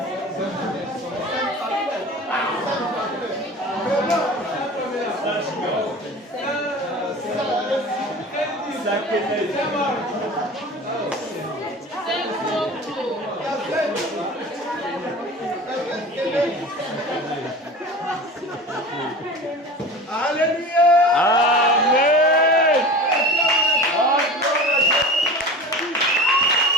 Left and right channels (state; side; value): normal; both; correlation 0.35